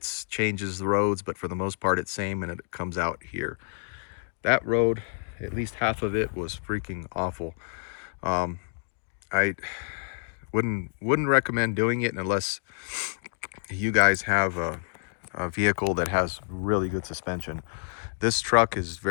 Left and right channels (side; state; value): right; silent; digital silence